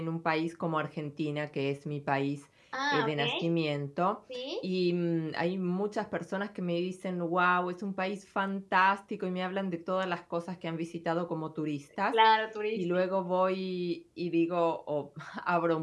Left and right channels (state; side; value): identical; both; correlation 1.00